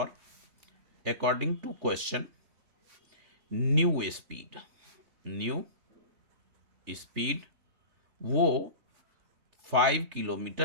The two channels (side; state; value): left; late; 3.3 ms